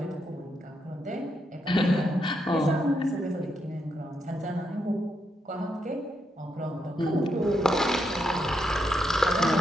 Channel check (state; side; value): normal; both; correlation 0.81